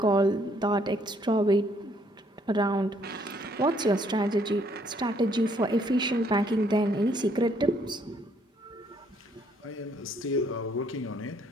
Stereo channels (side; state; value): both; normal; correlation 0.67